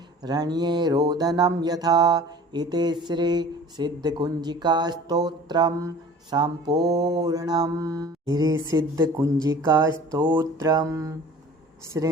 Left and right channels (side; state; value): both; normal; correlation 0.45